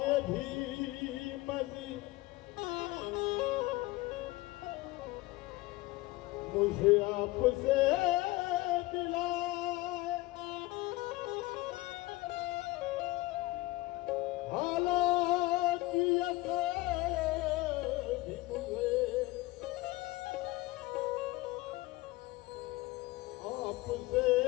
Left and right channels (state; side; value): quieter; right; 19.9 dB